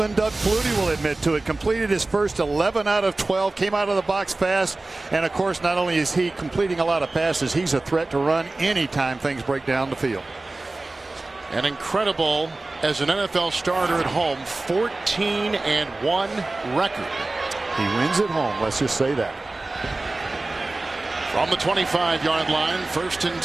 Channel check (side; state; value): left; quieter; 3.1 dB